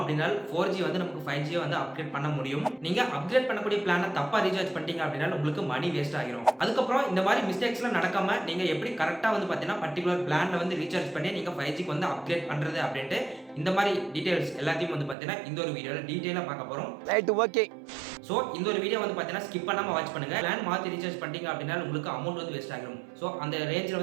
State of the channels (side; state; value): left; drops out; at 15.2 s